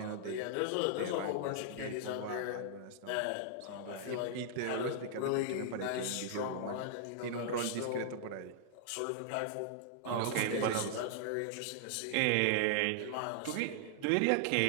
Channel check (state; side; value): different; both; correlation -0.01